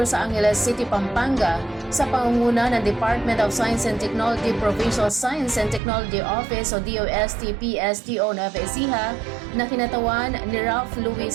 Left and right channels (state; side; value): drops out; left; at 5.8 s